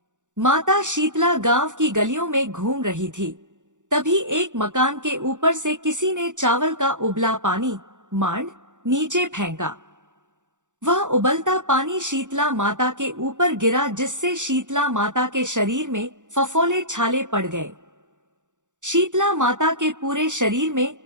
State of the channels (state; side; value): late; left; 0.86 ms